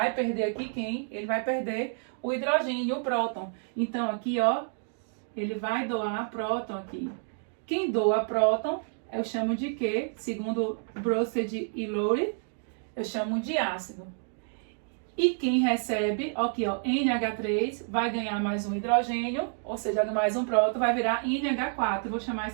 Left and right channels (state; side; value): silent; left; 58 dB below the other